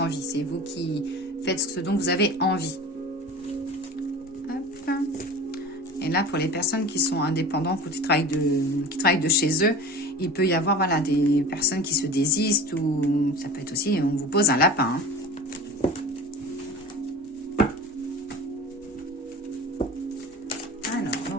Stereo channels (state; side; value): normal; both; correlation 0.36